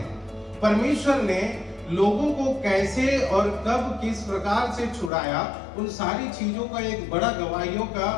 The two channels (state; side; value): drops out; right; at 5.1 s